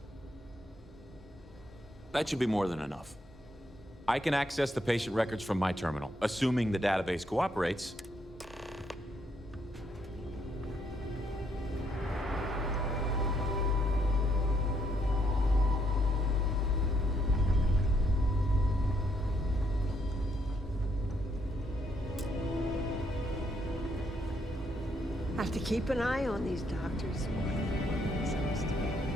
That should be more than enough. I can access the patient records from my terminal, assuming the database cooperates. Have to keep an eye on these doctors.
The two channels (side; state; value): both; normal; correlation 0.73